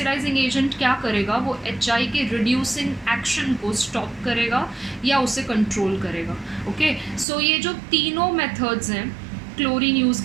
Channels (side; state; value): left; drops out; at 7.2 s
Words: एजेंट क्या करेगा, वो HI के रिड्यूसिंग एक्शन को स्टॉप करेगा या उसे कंट्रोल करेगा. ओके, सो ये जो तीनों मेथड्स हैं, क्लोरीन यूज़